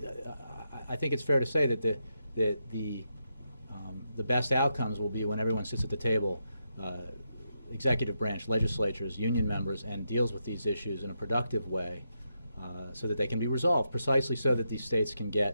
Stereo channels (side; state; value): both; inverted; correlation -0.84